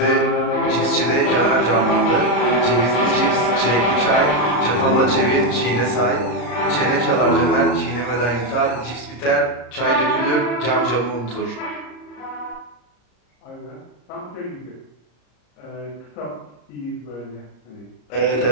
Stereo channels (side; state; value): right; late; 34 ms